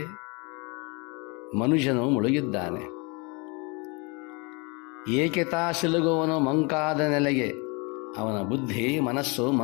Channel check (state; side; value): quieter; right; 29.9 dB